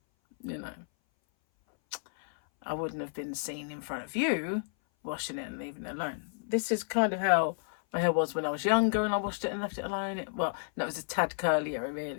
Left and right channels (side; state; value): right; silent; 57 dB below the other